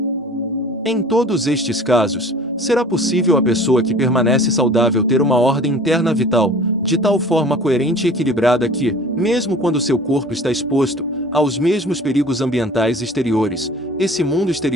Em todos estes casos, será possível a pessoa que permanece saudável ter uma ordem interna vital, de tal forma coerente e equilibrada que, mesmo quando seu corpo está exposto aos mesmos perigos ambientais exteriores, esse mundo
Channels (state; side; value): normal; both; correlation 0.45